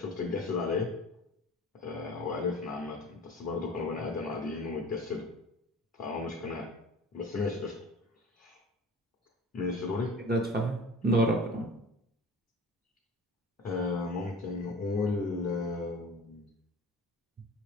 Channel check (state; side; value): normal; both; correlation 0.41